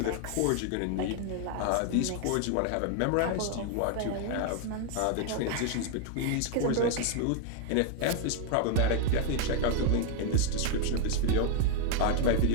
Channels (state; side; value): different; both; correlation 0.00